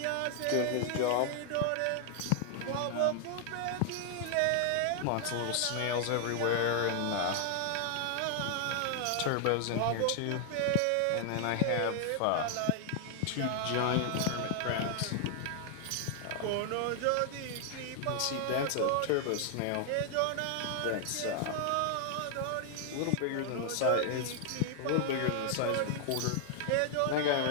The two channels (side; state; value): both; different; correlation 0.00